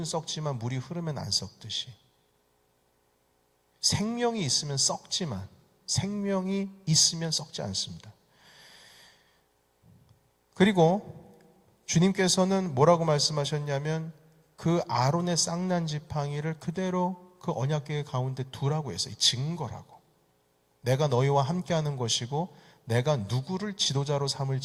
썩지만 물이 흐르면 안 썩듯이 생명이 있으면 썩지만 생명이 있으면 썩지 않습니다. 그리고 주님께서는 뭐라고 말씀하셨냐면 그 아론의 쌍난 지팡이를 그대로 그 언약궤 가운데 두라고 했어요. 증거라고. 내가 너희와 함께하는 것이고 내가 누구를 지도자로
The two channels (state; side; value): identical; both; correlation 1.00